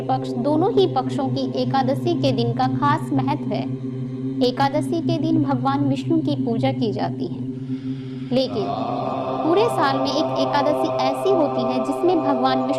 पक्ष दोनों ही पक्षों की एकादशी के दिन का खास महत्व है। एकादशी के दिन भगवान विष्णु की पूजा की जाती है, लेकिन पूरे साल में एक एकादशी ऐसी होती है जिसमें भगवान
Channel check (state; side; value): identical; both; correlation 1.00